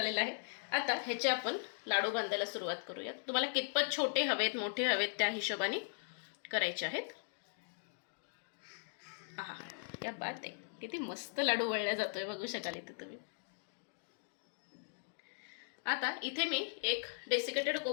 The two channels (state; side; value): silent; right; digital silence